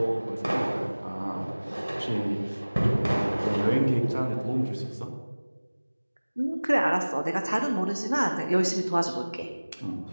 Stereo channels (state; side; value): inverted; both; correlation -1.00